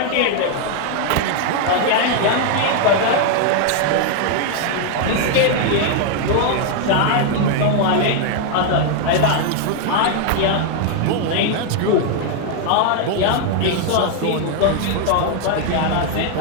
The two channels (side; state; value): both; different; correlation 0.00